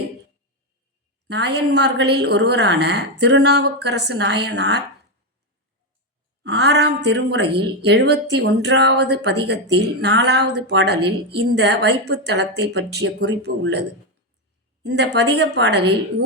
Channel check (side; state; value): both; normal; correlation 0.08